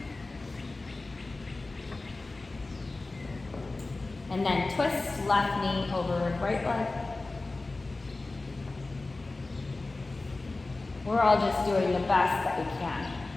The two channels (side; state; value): right; quieter; 3.3 dB